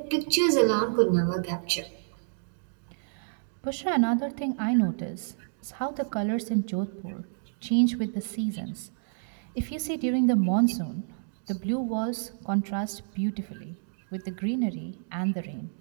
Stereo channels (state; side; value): silent; left; digital silence